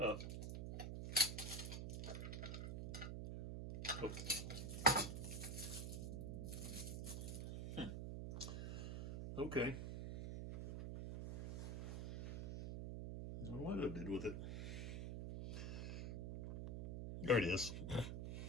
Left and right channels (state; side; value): noise; right; hum, 4 dB below the sound